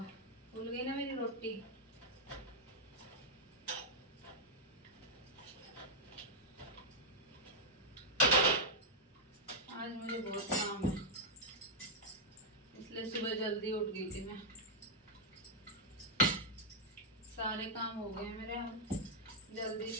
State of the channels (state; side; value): normal; both; correlation -0.05